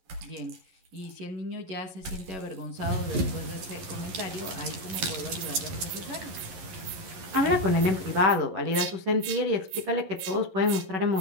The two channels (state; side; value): late; left; 11 ms